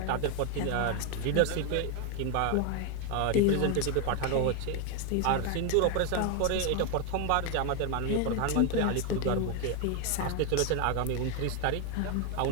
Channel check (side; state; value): both; different; correlation 0.01